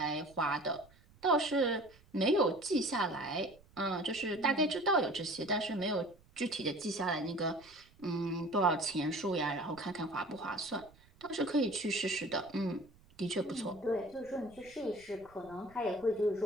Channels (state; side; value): noise; right; rumble, 26 dB below the sound